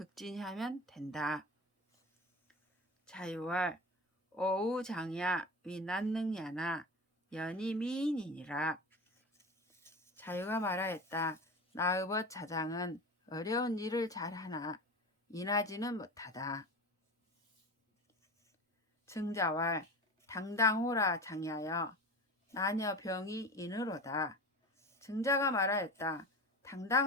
된다. 자유활 오우장야 위난능야나 연이 미인이니라. 자유가 말하였다. 나의벗 자장은 어려운 일을 잘하나 인하지는 못하다. 증자왈 당당호라 장야여 나녀 병이 인으로다. 증자가 말하였다.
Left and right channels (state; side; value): normal; both; correlation 0.30